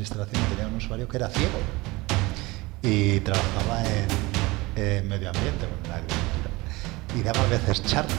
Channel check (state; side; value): quieter; left; 22.2 dB